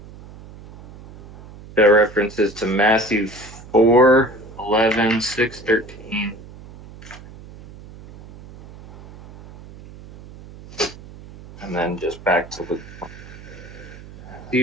The references to Matthew 4, 11, 6, 13, and then just back to Luke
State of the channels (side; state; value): right; noise; hum, 18 dB below the sound